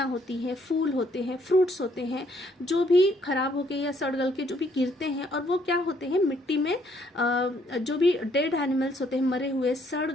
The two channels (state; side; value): normal; both; correlation 0.68